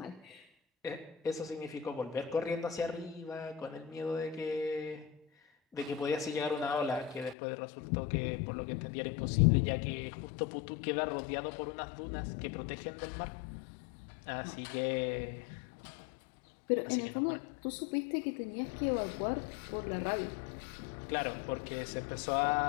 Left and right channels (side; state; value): right; drops out; at 7.4 s